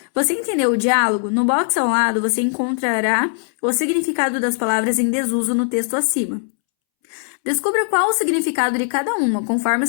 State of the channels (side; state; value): right; silent; 66 dB below the other